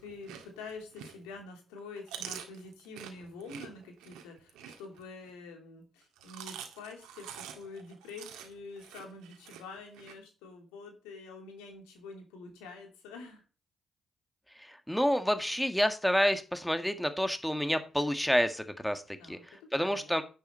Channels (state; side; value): normal; both; correlation 0.95